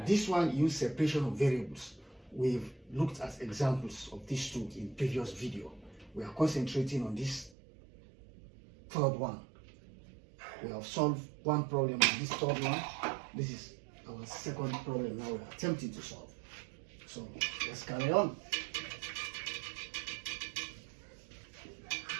one, use separation of variables. We've looked at examples of these two in previous video. We are concentrating on this third one. We have solved one problem on this third one. This is our second problem now we are attempting to solve. So let's carry on.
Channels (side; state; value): left; drops out; at 7.5 s